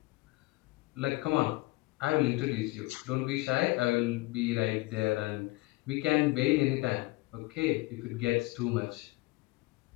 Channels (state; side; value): quieter; right; 22.0 dB